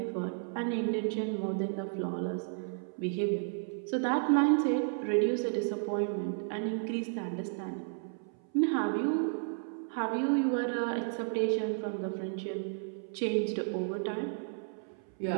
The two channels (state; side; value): silent; left; 56 dB below the other